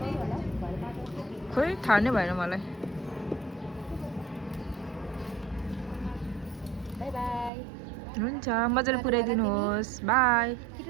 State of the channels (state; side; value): drops out; left; at 7.5 s